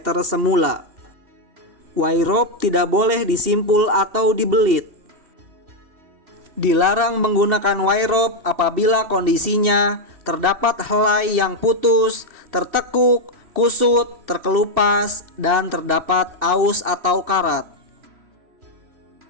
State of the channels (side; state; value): left; late; 2.7 ms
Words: semula. Wire rope tidak boleh disimpul atau dibelit. Dilarang menggunakan wire rope apabila kondisinya terdapat helai yang putus, tertekuk, kusut, terkelupas, dan terdapat aus atau karat.